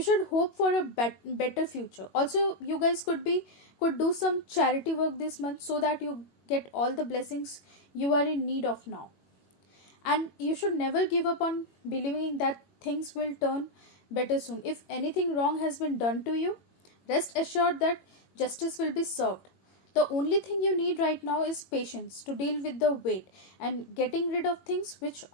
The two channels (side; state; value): right; late; 21 ms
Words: hope for a better future. Also, you guys could do some charity work this month so that you get all the blessings you are in need of now. And you should never give up on believing that things will turn better soon. If anything wrong has been done to you, rest assured that justice will be served. The only thing you need right now is patience to deal with the weight and getting rid of things which